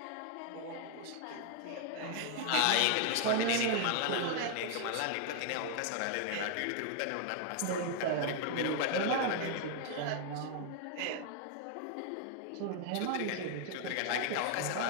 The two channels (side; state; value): both; different; correlation 0.00